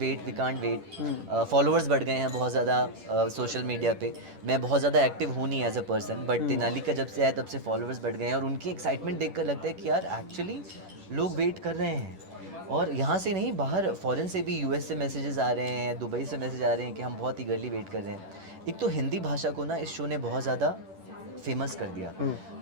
वेट। फॉलोअर्स बढ़ गए हैं बहुत ज़्यादा सोशल मीडिया पे। मैं बहुत ज़्यादा एक्टिव हूँ नहीं as a person, but Tenali का जब से आया तब से फॉलोअर्स बढ़ गए हैं और उनकी एक्साइटमेंट देखकर लगता है कि यार एक्चुअली लोग वेट कर रहे हैं। और यहाँ से नहीं, बाहर फॉरेन से भी, यूएस से मैसेजेस आ रहे हैं, दुबई से मैसेज आ रहे हैं कि हम बहुत ईगरली वेट कर रहे हैं। एक तो हिंदी भाषा को ना इस शो ने बहुत ज़्यादा फेमस कर दिया,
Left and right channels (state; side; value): late; left; 10 ms